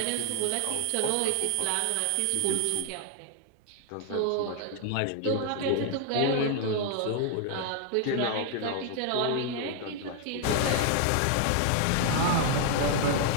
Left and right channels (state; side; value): different; both; correlation 0.00